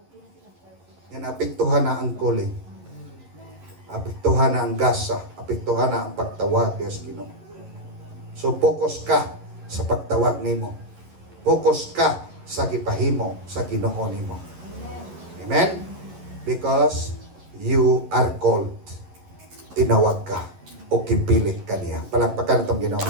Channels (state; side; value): late; left; 11 ms